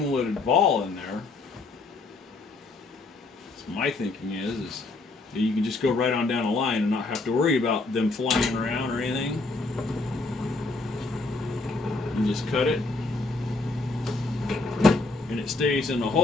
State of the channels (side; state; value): right; quieter; 3.4 dB